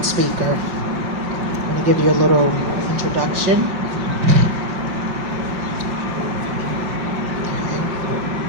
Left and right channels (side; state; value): left; late; 5.4 ms